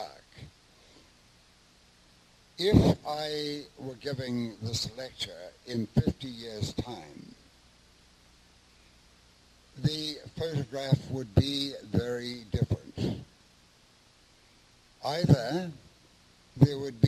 If I were giving this lecture in 50 years' time, the photograph would be very different. Either there would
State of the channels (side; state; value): both; identical; correlation 1.00